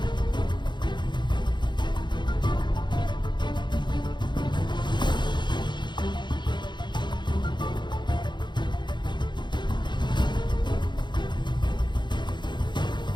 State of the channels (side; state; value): right; late; 0.22 ms